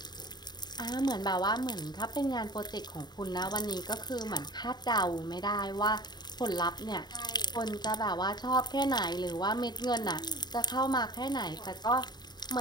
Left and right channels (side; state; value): right; late; 0.20 ms